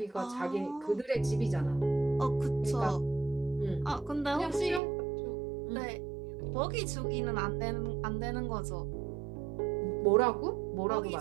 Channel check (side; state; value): left; drops out; at 4.8 s